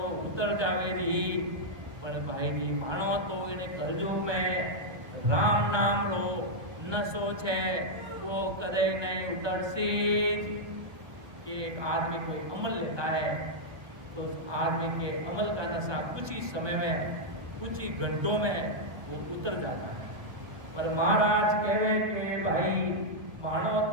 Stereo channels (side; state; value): left; late; 1.4 ms